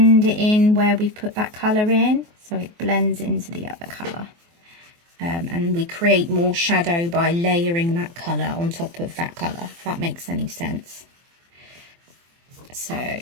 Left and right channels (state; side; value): late; left; 24 ms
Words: it in where we put that colour in, so it blends into the other colour. And we create more shadow by layering that colour on top of that colour, if that makes any sense. So